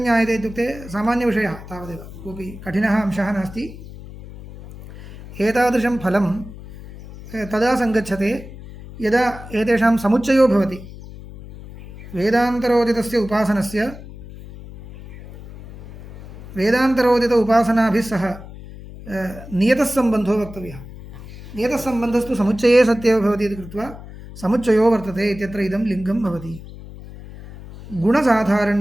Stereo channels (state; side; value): noise; left; hum, 15 dB below the sound